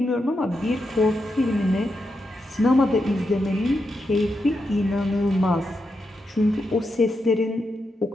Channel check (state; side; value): normal; both; correlation 0.85